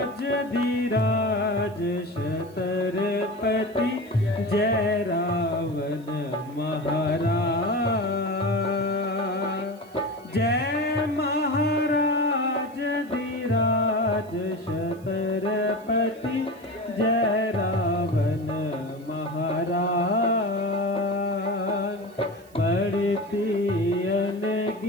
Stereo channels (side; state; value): right; noise; hiss, 28 dB below the sound